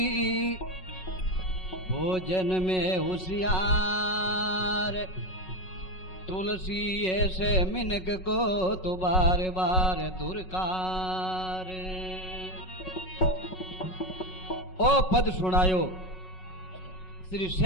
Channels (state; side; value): late; right; 5.4 ms